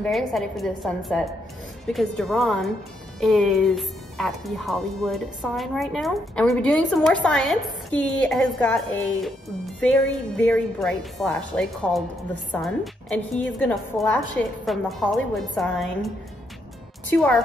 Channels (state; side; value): normal; both; correlation 0.76